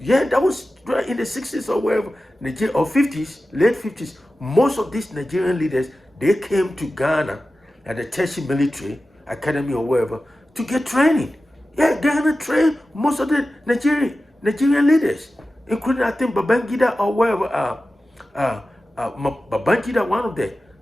Yeah, that was in the 60s or wherever, or 50s, late 50s. Most of these Nigerian leaders, they came to Ghana at the Trashy Military Academy or wherever to get training. Yeah, Ghana trained most of the Nigerian leaders, including, I think, Babangida or wherever. Babangida, one of the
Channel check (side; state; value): both; normal; correlation 0.94